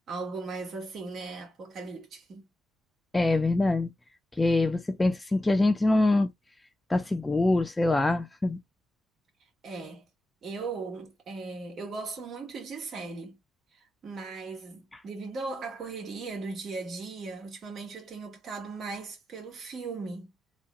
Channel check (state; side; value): normal; both; correlation 0.92